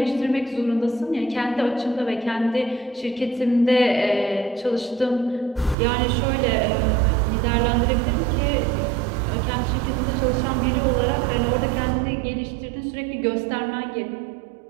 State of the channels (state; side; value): drops out; left; at 5.8 s